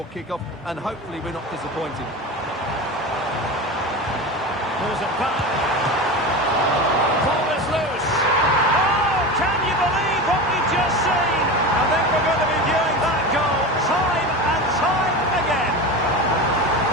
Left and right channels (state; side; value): normal; both; correlation 0.26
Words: kick-off, and hopefully we're not disappointed. Pulls it back. Ball is loose. Oh, can you believe what we've just seen? I think we're going to be viewing that goal time and time again.